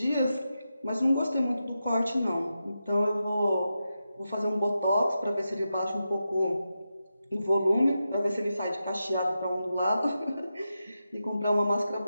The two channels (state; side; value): inverted; both; correlation -0.89